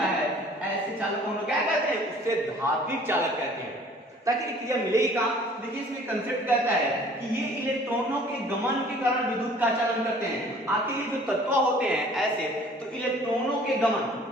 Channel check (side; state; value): both; normal; correlation 0.52